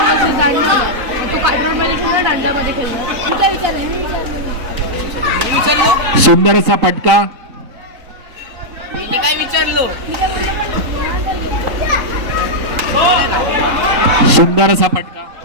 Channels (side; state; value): left; late; 3.9 ms